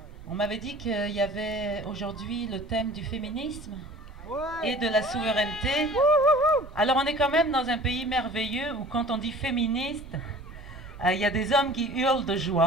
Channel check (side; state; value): both; normal; correlation 0.45